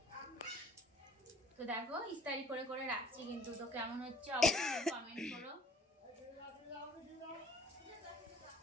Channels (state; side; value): normal; both; correlation 0.51